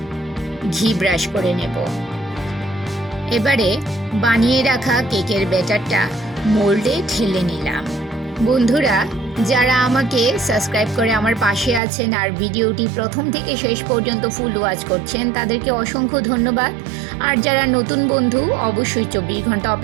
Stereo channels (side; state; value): left; drops out; at 11.8 s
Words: ঘি ব্রাশ করে নেব। এবারে বানিয়ে রাখা কেকের ব্যাটারটা মোল্ডে ঢেলে নিলাম। বন্ধুরা, যারা আমাকে সাবস্ক্রাইব করে আমার পাশে আছেন আর ভিডিওটি প্রথম থেকে শেষ পর্যন্ত ফুল ওয়াচ করছেন, তাদেরকে অসংখ্য ধন্যবাদ। আর যারা নতুন বন্ধু, অবশ্যই 24 ঘন্টা